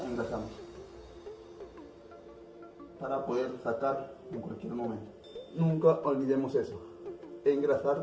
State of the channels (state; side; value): identical; both; correlation 1.00